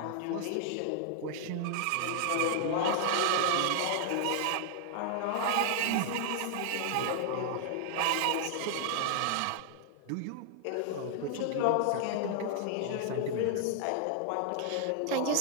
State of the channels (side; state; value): both; different; correlation 0.00